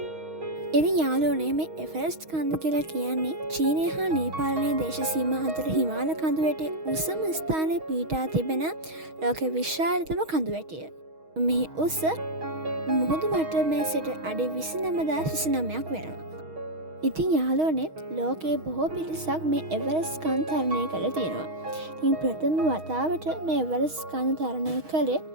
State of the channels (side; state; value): left; late; 6.3 ms